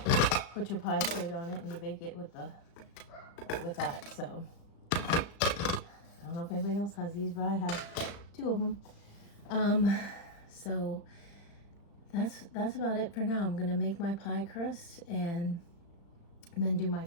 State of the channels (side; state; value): right; late; 35 ms